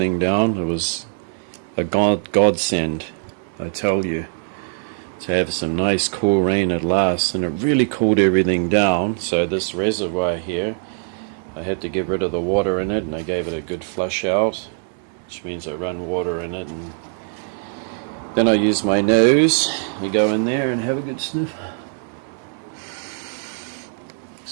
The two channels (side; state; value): left; silent; 64 dB below the other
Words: down. It was a godsend, I tell you, to have some nice cool rain at last, and it really cooled everything down. So this reservoir here, I had to get rid of the water in it, and I gave it a good flush out, which means I run water in it, and then I use my nose. You go in there and have a good sniff.